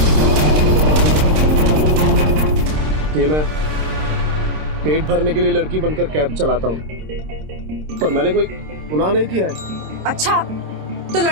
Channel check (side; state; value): left; late; 26 ms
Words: ये मैं पेट भरने के लिए लड़की बनकर कैब चलाता हूँ, पर मैंने कोई गुनाह नहीं किया है। अच्छा, तो